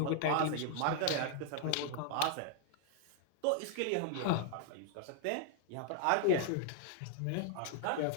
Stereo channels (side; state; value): both; different; correlation -0.01